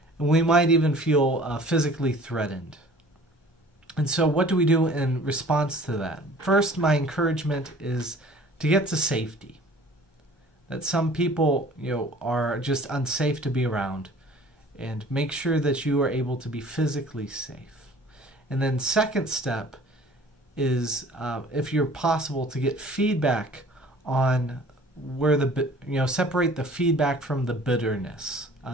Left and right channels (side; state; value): both; normal; correlation 0.49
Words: And we might even feel physically threatened. And so what do we do in response to that? First, my encouragement is to get to safety. That some people, are just unsafe to be around. And make sure that you are able to be physically safe. And then second step is, if you're possible, to get feedback on where separate the feedback from the bitterness.